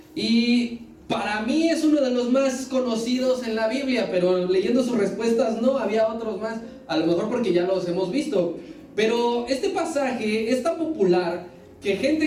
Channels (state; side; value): identical; both; correlation 1.00